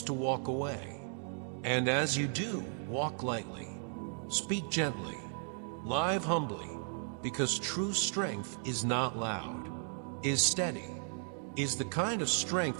to walk away. And as you do, walk lightly. Speak gently. Live humbly. Because true strength is not loud, is steady, is the kind of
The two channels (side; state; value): left; silent; 54 dB below the other